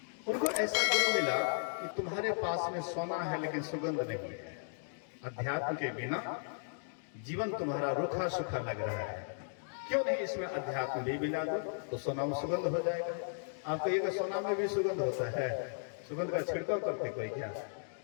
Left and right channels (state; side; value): silent; right; digital silence